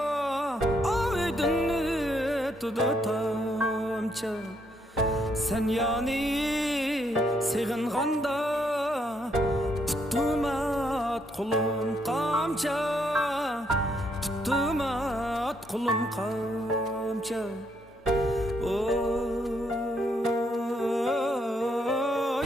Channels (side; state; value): both; normal; correlation 0.74